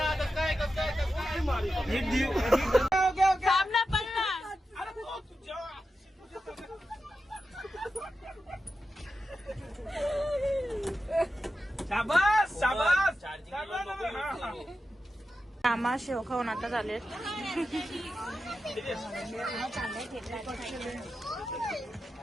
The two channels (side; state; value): both; normal; correlation 0.90